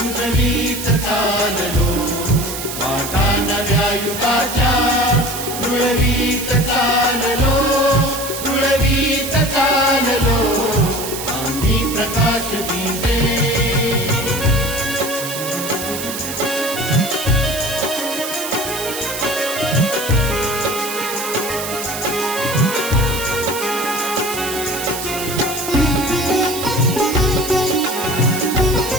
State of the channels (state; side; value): noise; right; hiss, 7 dB below the sound